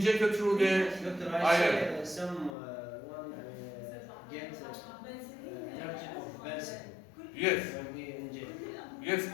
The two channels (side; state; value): right; drops out; at 2.5 s